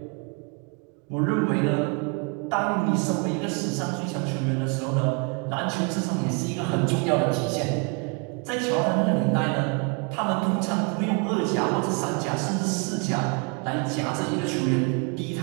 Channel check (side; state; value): left; quieter; 33.1 dB